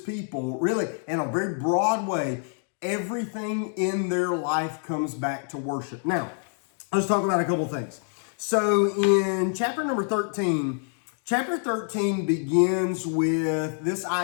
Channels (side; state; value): right; silent; 56 dB below the other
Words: really in a very broad way, everything in their life comes back to worship. Now, let's talk about a couple things. So in chapter number 13, chapter 13 begins with this